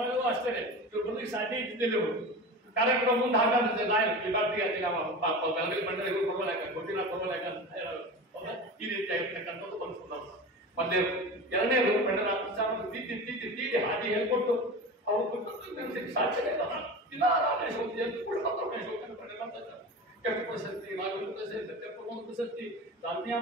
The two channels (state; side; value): normal; both; correlation 0.30